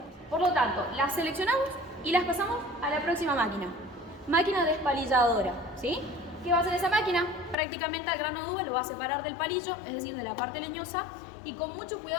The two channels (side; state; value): right; drops out; at 7.6 s